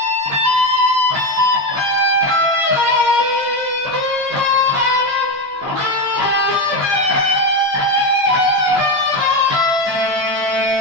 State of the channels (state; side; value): late; left; 15 ms